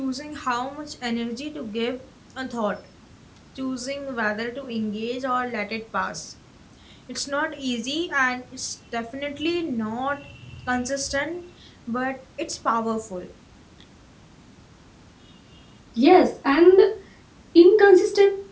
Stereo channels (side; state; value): both; identical; correlation 1.00